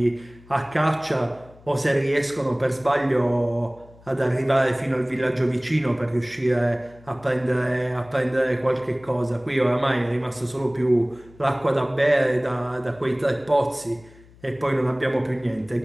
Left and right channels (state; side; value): noise; left; hum, 25 dB below the sound